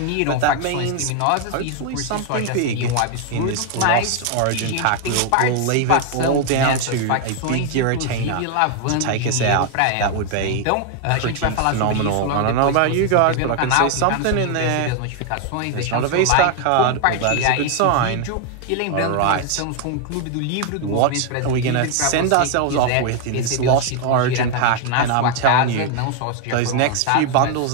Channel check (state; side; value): different; both; correlation 0.00